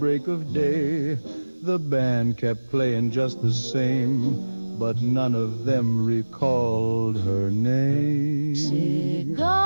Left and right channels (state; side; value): inverted; both; correlation -1.00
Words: of day. The band kept playing just the same, but none of them recalled her name.